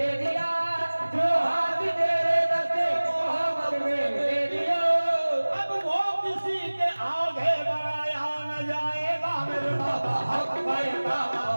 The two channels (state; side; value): inverted; both; correlation -1.00